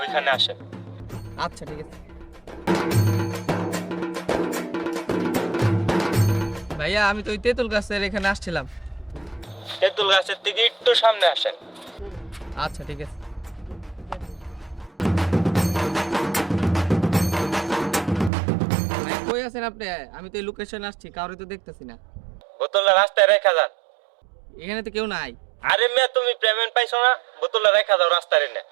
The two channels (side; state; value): left; drops out; at 18.3 s